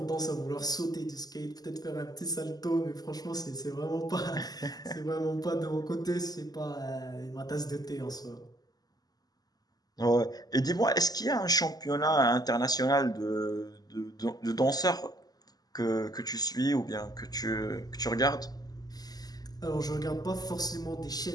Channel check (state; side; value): late; right; 0.19 ms